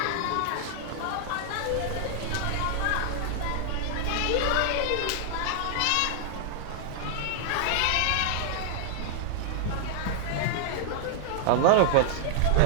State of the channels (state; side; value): different; both; correlation -0.01